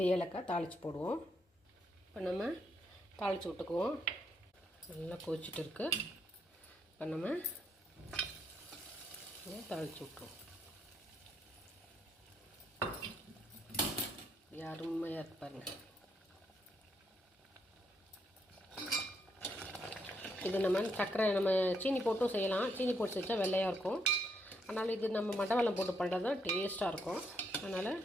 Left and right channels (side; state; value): both; normal; correlation 0.76